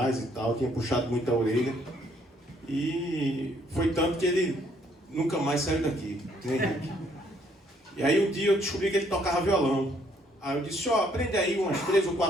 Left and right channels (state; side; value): normal; both; correlation 0.67